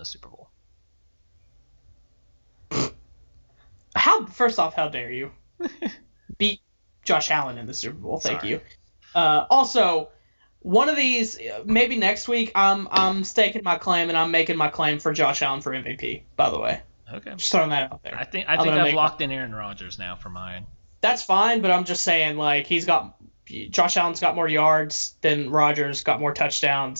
Super Bowl. First off, how dare you beat Josh Allen in the Super Bowl? Thank you. Also. One of these, maybe next week, I'm staking my claim, and I'm making my claim for Josh Allen for MVP, by the way. Okay. Just throwing that out there. I think I've locked in Aaron Rodgers now for mine. That's fine, but I'm just saying, Josh Allen's got more yards than Rodgers, got more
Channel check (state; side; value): inverted; both; correlation -1.00